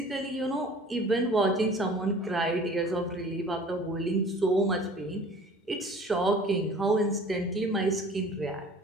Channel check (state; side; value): normal; both; correlation 0.47